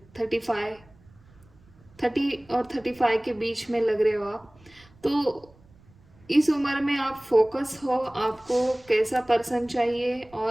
35, 30 और 35 के बीच में लग रहे हो आप, तो इस उम्र में आप फोकस हो, आपको कैसा पर्सन चाहिए,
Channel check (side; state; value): right; noise; rumble, 28 dB below the sound